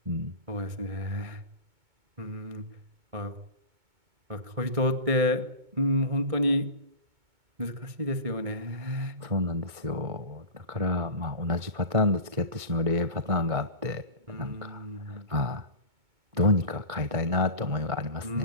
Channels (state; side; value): late; left; 2.2 ms